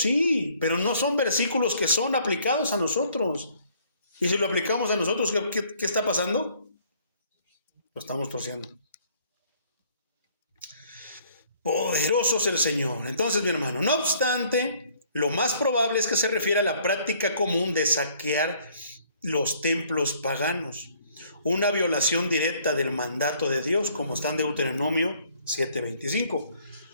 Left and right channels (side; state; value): both; inverted; correlation -0.61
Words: pero no son versículos que son aplicados a nosotros. Y si lo aplicamos a nosotros, ¿qué está pasando? Lo estamos torciendo. Poderoso es el Señor. Entonces, mi hermano, no obstante, lo más probable es que se refiere a la práctica común de saquear los templos paganos. Una violación directa del mandato de Dios, como está en Deuteronomio 7:25.